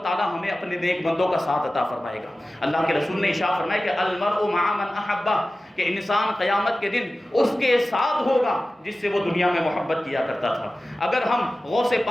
تعالی ہمیں اپنے نیک بندوں کا ساتھ عطا فرمائے گا۔ اللہ کے رسول نے ارشاد فرمایا کہ المرء مع من احبہ، کہ انسان قیامت کے دن اس کے ساتھ ہوگا جس سے وہ دنیا میں محبت کیا کرتا تھا۔ اگر ہم غوث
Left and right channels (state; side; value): normal; both; correlation 0.96